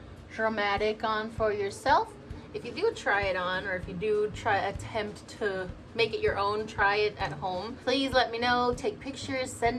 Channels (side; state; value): both; identical; correlation 1.00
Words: dramatic on for yourself. If you do try it on, or if you do attempt to make it your own, try it at home, please let me know. Take pictures,